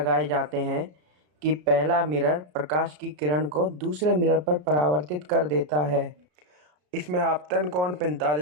जाते हैं कि पहला मिरर प्रकाश की किरण को दूसरे मिरर पर परावर्तित कर देता है। इसमें आपतन कोण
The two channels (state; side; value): late; left; 33 ms